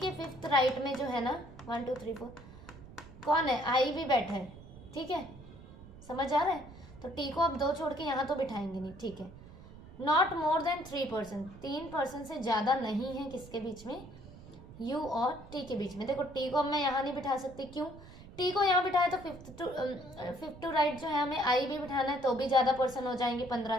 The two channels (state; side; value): noise; right; rumble, 18 dB below the sound